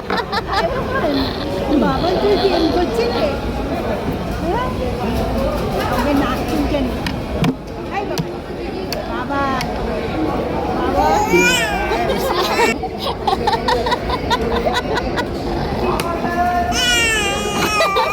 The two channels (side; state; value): both; identical; correlation 1.00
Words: বাবা তুই প্রেম করছিস আমাকে নাক চুলকে নি বাবা বাবা